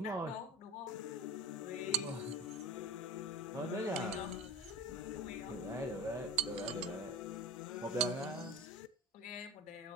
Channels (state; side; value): normal; both; correlation 0.31